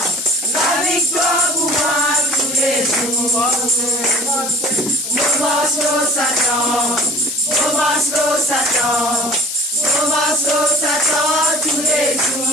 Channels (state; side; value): noise; left; hiss, 6 dB below the sound